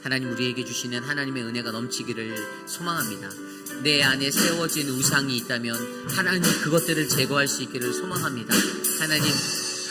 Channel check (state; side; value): identical; both; correlation 1.00